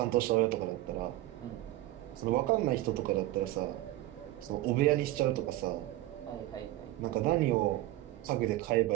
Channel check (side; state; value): left; quieter; 16.3 dB